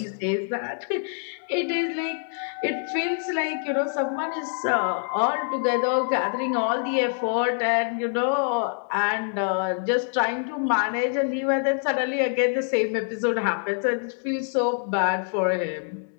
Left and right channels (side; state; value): right; silent; 60 dB below the other